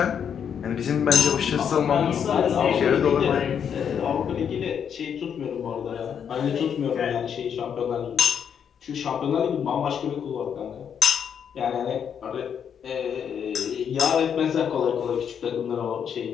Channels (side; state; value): right; quieter; 7.9 dB